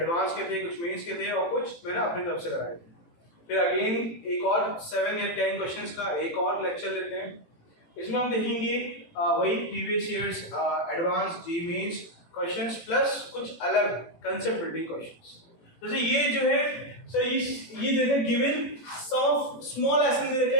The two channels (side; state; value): right; late; 18 ms